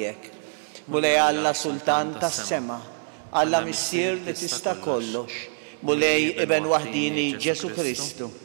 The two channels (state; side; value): silent; left; 62 dB below the other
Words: Mulej Alla Sultan tas-sema, Alla Missier li tista' kollox, mulej Iben waħdini Ġesu Kristu,